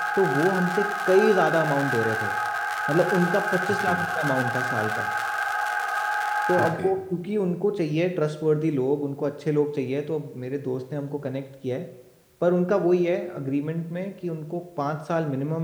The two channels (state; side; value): identical; both; correlation 1.00